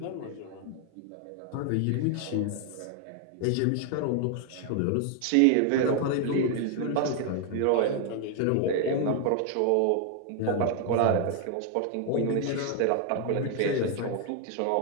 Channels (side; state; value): both; different; correlation 0.00